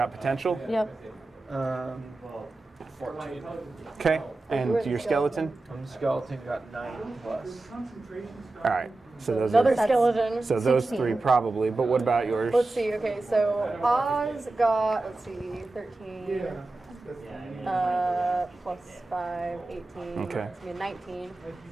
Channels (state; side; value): quieter; left; 3.0 dB